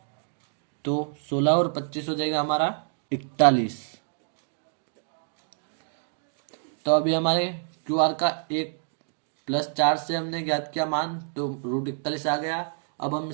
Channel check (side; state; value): left; silent; digital silence